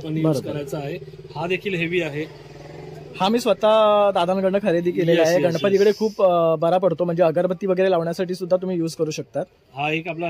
यूज करायचा आहे. हा देखील हेवी आहे. हा मी स्वतः दादांकडनं खरेदी केलेला आहे. गणपतीकडे खूप बरा पडतो, म्हणजे अगरबत्ती वगैरे लावण्यासाठी सुद्धा तुम्ही युज करू शकता. हा एक आपला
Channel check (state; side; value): identical; both; correlation 1.00